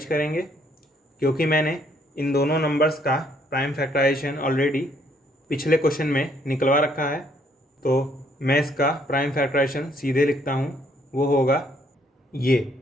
करेंगे, क्योंकि मैंने इन दोनों नंबर्स का प्राइम फैक्टराइजेशन ऑलरेडी पिछले क्वेश्चन में निकलवा रखा है, तो मैं इसका प्राइम फैक्टराइजेशन सीधे लिखता हूँ, वो होगा ये।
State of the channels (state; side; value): normal; both; correlation 0.67